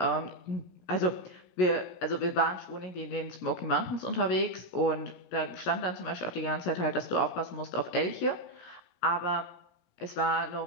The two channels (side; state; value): right; late; 17 ms